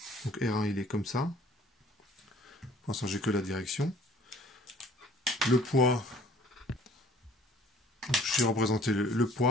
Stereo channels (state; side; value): normal; both; correlation 0.54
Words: Donc R1 il est comme ça. Pour l'instant j'ai que la direction. Le poids, j'ai représenté le